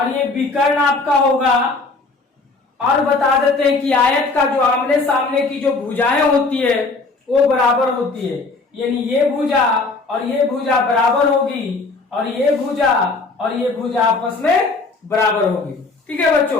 ये विकर्ण आपका होगा। और बता देते हैं कि आयत का जो आमने सामने की जो भुजाएं होती है वो बराबर होती है, यानी ये भुजा और ये भुजा बराबर होगी और ये भुजा और ये भुजा आपस में बराबर होगी। ठीक है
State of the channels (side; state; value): right; quieter; 3.7 dB